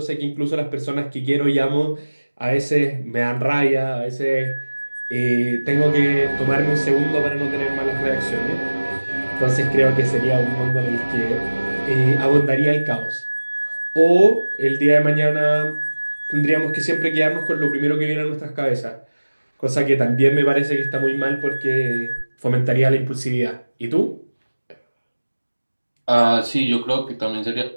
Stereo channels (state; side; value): inverted; both; correlation -1.00